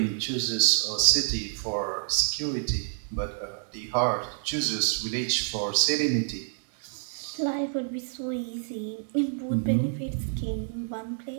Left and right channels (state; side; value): silent; left; digital silence